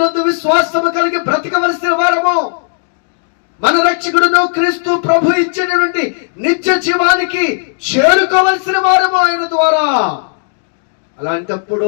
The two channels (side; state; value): right; silent; digital silence